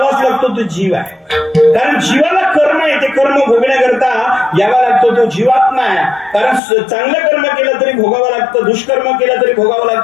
लागतो तो जीव आहे. कारण जीवाला कर्म आहे, ते कर्म भोगण्याकरता यावा लागतो तो जीवात्मा आहे. कारण चांगलं कर्म केलं तरी भोगावं लागतं, दुष्कर्म केलं तरी भोगावं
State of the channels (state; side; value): drops out; right; at 6.6 s